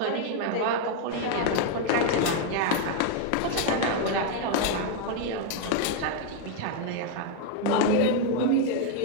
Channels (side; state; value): both; different; correlation 0.01